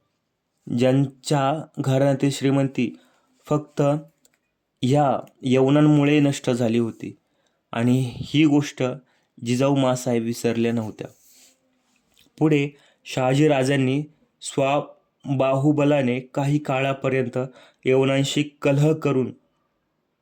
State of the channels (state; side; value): identical; both; correlation 1.00